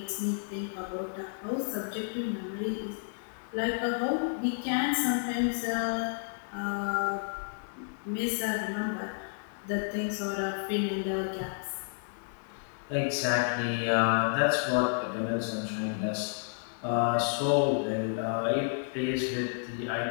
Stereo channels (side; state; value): right; silent; digital silence